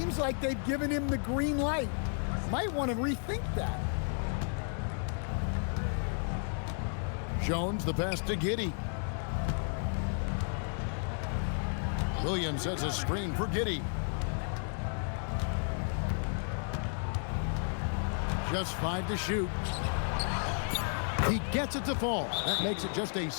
like they've given him the green light. Might want to rethink that. Jones, the pass to Giddey. Williams sets a screen for Giddey. Just 5 to shoot. He gets it to fall. That makes it just a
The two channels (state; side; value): silent; right; 56 dB below the other